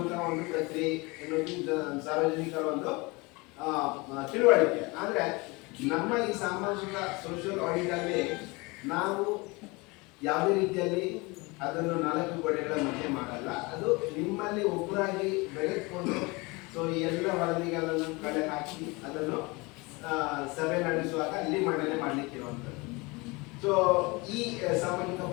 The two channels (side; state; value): right; quieter; 25.5 dB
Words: ಒಂದು ಪ್ರಕ್ರಿಯೆ ಎನ್ನುವುದು ಸಾರ್ವಜನಿಕರ ಒಂದು ತಿಳುವಳಿಕೆ. ಆದ್ರೆ ನಮ್ಮ ಈ ಸಾಮಾಜಿಕ ಸೋಷಿಯಲ್ ಆಡಿಟ್ ಅಲ್ಲಿ ನಾವು ಯಾವುದೇ ರೀತಿಯಲ್ಲಿ ಅದನ್ನು 4 ಗೋಡೆಗಳ ಮಧ್ಯೆ ಮಾಡಲ್ಲ. ಅದು ನಿಮ್ಮಲ್ಲಿ ಒಬ್ಬರಾಗಿ ಬೆಳೆದುಕೊಂಡು ಸೊ ಈ ಎಲ್ಲ ವರದಿಗಳನ್ನು ಕಲೆ ಹಾಕಿ ಅದನ್ನು ಸಭೆ ನಡೆಸುವಾಗ ಅಲ್ಲಿ ಮಂಡನೆ ಮಾಡ್ಲಿಕ್ಕಿರುವಂಥದ್ದು. ಸೊ ಈ ಸಾಮಾಜಿಕ